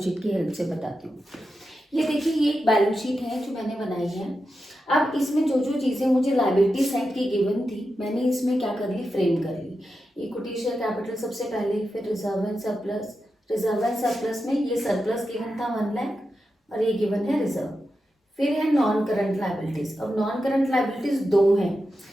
शीट की हेल्प से बताती हूँ। ये देखिए ये एक बैलेंस शीट है जो मैंने बनाई है। अब इसमें जो जो चीज़ें मुझे लाइबिलिटी साइड की गिवन थी मैंने इसमें क्या कर ली, फ्रेम कर ली। इक्विटी शेयर कैपिटल सबसे पहले, फिर reserve and surplus. Reserve and surplus में ये सरप्लस गिवन था 1 लाख और ये गिवन है रिजर्व। फिर है नॉन करंट लाइबिलिटीज। अब नॉन करंट लाइबिलिटीज 2 हैं,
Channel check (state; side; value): normal; both; correlation 0.89